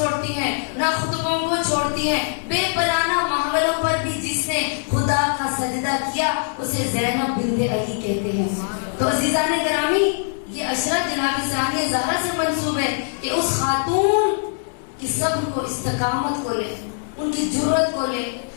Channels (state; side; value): silent; right; 64 dB below the other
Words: ہیں، نہ خطبوں کو چھوڑتی ہیں. بے پرانہ ماحولوں پر بھی جس نے خدا کا سجدہ کیا اسے زینب بنت علی کہتے ہیں. تو عزیزان گرامی یہ عشرت جناب ثانیہ زہرا سے منسوب ہے کہ اس خاتون کی صبر کو، استقامت کو لے، ان کی جرأت کو لے،